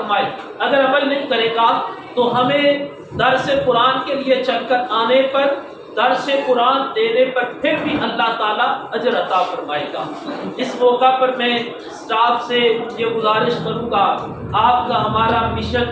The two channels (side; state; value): both; identical; correlation 1.00